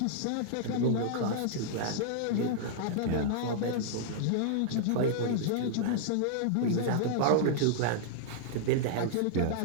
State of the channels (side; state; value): both; different; correlation -0.01